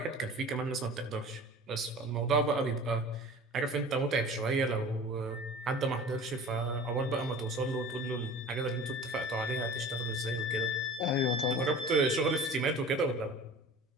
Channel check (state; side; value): normal; both; correlation 0.40